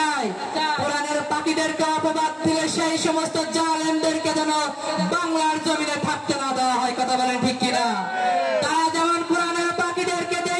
কোরআনের পাখিদেরকে অপবাদ দিলে সেই সমস্ত জালেমদেরকে যেন বাংলার জমিনে থাকতে না দেওয়া হয়। কথা বলেন ঠিক কিনা? তারা যেমন কোরআনের পাখিদেরকে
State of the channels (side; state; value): both; identical; correlation 1.00